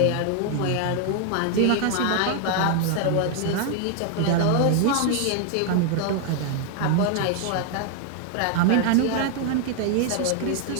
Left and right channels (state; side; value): different; both; correlation 0.00